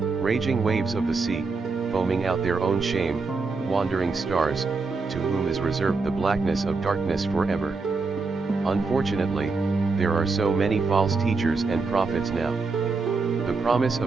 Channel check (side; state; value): left; quieter; 4.2 dB